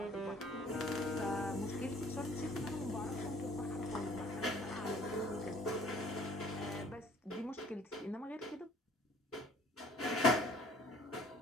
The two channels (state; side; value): normal; both; correlation 0.56